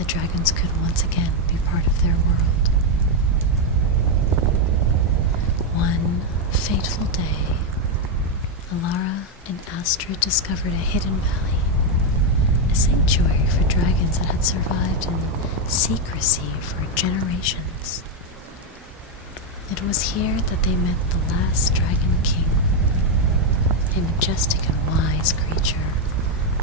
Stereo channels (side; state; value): both; normal; correlation 0.03